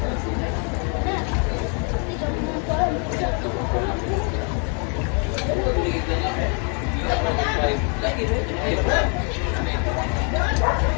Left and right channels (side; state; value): right; quieter; 38.9 dB